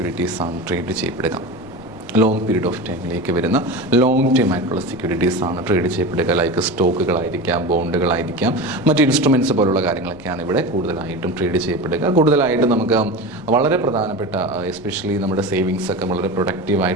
ആണ് ട്രേഡ് ചെയ്യപ്പെടുക. ലോങ് പീരീഡ് ഓഫ് ടൈമിലേക്ക് വരുന്ന ലോങ് ടൈം ആയിട്ടുള്ള സെക്യൂരിറ്റീസ് ആണ് ട്രേഡ് ചെയ്യപ്പെടുക. ലൈക്ക് സ്റ്റോക്കുകളായിരിക്കാം, ബോണ്ടുകളായിരിക്കാം, മറ്റ് ഇൻസ്ട്രുമെൻറ്റ്സ് പോലുള്ള കാര്യങ്ങളൊക്കെയാണ് ഇവിടെ കൂടുതലായിട്ടും ട്രേഡ് ചെയ്യപ്പെടുക. കൂടുതലായിട്ടും നമുക്ക് വളരെ പ്രധാനപ്പെട്ട, എസ്പെഷ്യലി നമ്മുടെ സേവിങ്സ് ഒക്കെ വളരെ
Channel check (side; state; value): left; noise; rumble, 21 dB below the sound